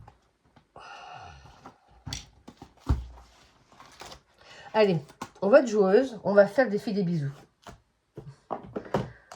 Allez, on va être joueuse. On va faire le défi des bisous.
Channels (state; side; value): identical; both; correlation 1.00